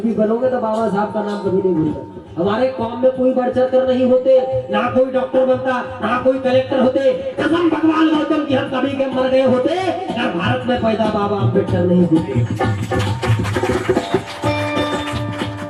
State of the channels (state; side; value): identical; both; correlation 1.00